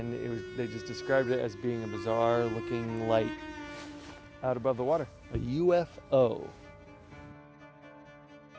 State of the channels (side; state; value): both; identical; correlation 1.00